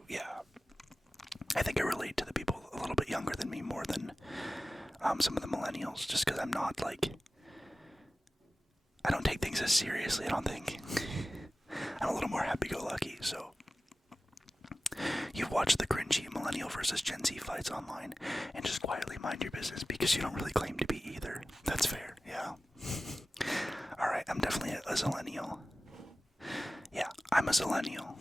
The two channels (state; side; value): normal; both; correlation 0.96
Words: yeah. I think I relate to the people a little bit younger than me more than some of the millennials, just because I'm not, like, I don't take things as seriously, I don't think. I'm a little more happy-go-lucky, so. You've watched the cringy millennial versus Gen Z fights online, and just quietly mind your business because you don't really claim to be either. That's fair, yeah. Alright, I'm definitely a zillennial. Yeah, I'm a zillennial.